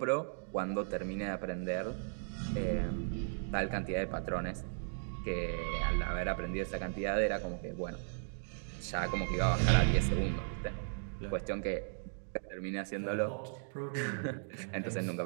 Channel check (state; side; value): silent; left; digital silence